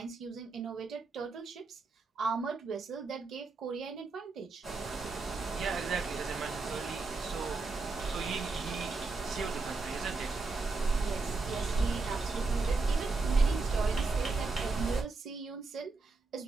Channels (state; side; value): quieter; left; 3.8 dB